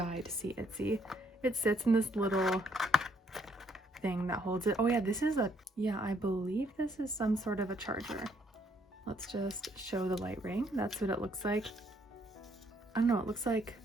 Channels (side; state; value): both; normal; correlation 0.68